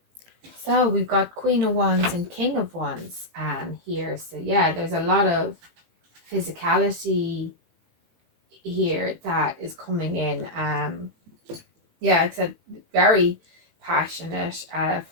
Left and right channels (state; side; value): late; left; 18 ms